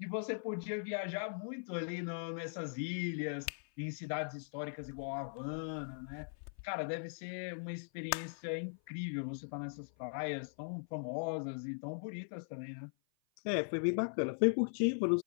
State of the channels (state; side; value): silent; right; 51 dB below the other